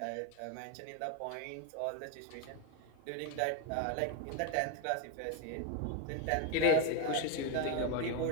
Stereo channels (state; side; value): different; both; correlation 0.02